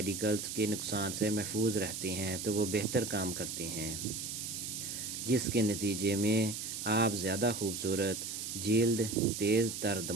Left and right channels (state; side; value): noise; right; hiss, 5 dB below the sound